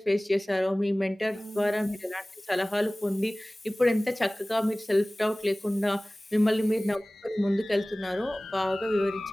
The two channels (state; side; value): normal; both; correlation 0.98